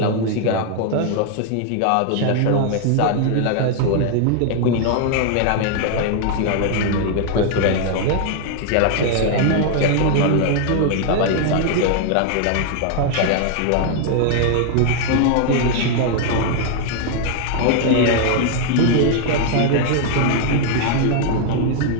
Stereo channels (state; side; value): different; both; correlation 0.00